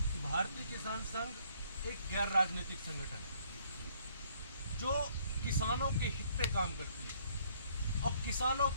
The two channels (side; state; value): both; inverted; correlation -0.64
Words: भारतीय किसान संघ एक गैर राजनीतिक संगठन है जो किसानों के हित पे काम करती है और किसानों